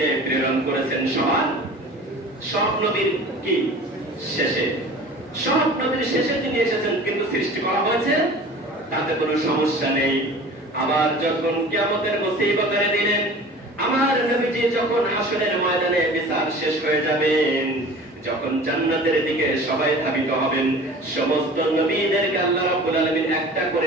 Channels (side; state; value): both; normal; correlation 0.41